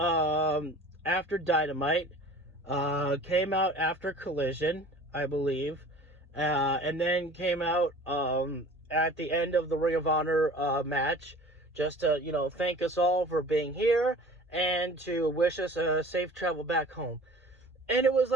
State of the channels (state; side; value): normal; both; correlation 0.44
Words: Dynamite, came out after Collision, I believe, and then came out at the end of the Ring of Honor match, just to thank us all for being here and to wish us a safe travel back home. And it was